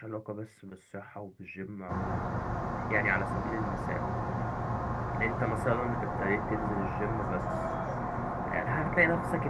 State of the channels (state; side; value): identical; both; correlation 1.00